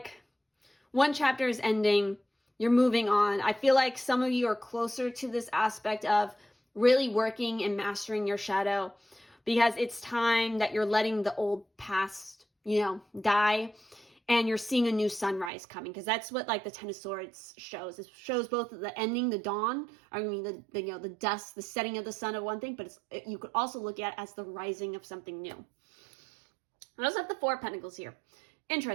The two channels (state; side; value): drops out; left; at 15.5 s